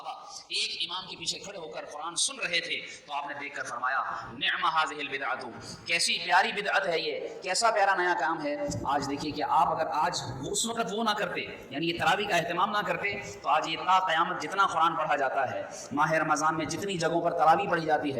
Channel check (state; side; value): identical; both; correlation 1.00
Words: ایک امام کے پیچھے کھڑے ہو کر قرآن سن رہے تھے تو آپ نے دیکھ کر فرمایا نعم هذه البدعۃ, کیسی پیاری بدعت ہے یہ, کیسا پیارا نیا کام ہے. آج دیکھیے کہ آپ اگر آج اس وقت وہ نہ کرتے یعنی یہ تراویح کا اہتمام نہ کرتے تو آج یہ تا قیامت جتنا قرآن پڑھا جاتا ہے, ماہ رمضان میں جتنی جگہوں پر تراویح پڑھی جاتی